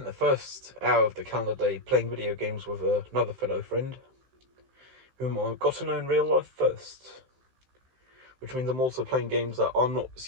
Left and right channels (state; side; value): late; left; 15 ms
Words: the first hour of the calendar day playing video games with another fellow friend, whom I got to know in real life first. Which means I'm also playing games that I'm not